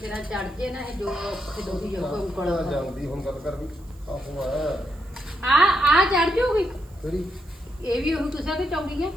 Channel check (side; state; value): right; noise; hiss, 29 dB below the sound